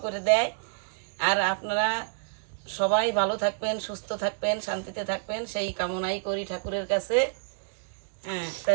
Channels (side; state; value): left; silent; digital silence